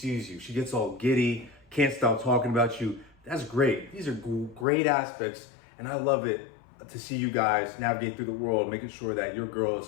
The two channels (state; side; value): drops out; right; at 4.7 s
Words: you. She gets all giddy, can't stop talking about you. That's great. These are great aspects, and I love it to see you guys navigate through the world, making sure that your girl is